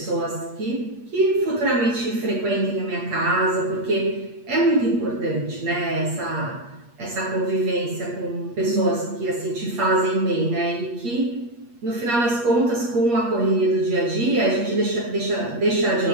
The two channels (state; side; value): late; left; 8.4 ms